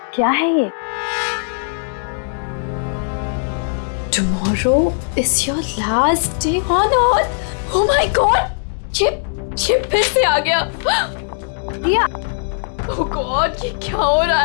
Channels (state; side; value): silent; right; digital silence